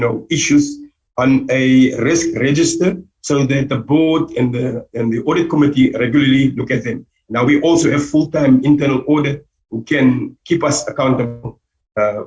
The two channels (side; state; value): both; identical; correlation 1.00